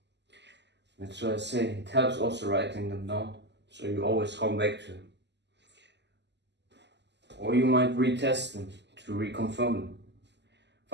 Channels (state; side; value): late; left; 0.51 ms